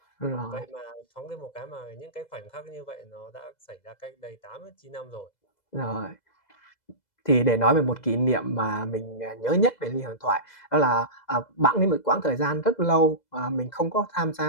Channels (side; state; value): right; late; 2.0 ms